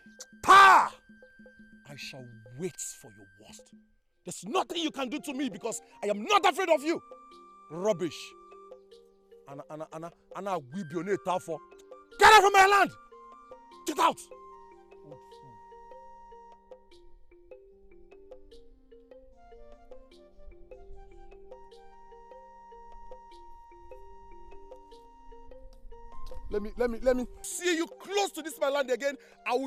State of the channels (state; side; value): identical; both; correlation 1.00